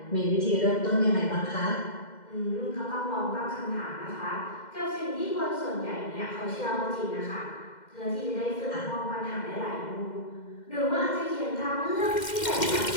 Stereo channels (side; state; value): right; late; 2.1 ms